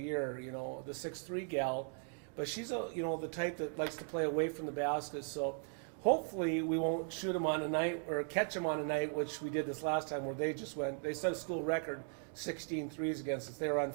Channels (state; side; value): silent; left; 52 dB below the other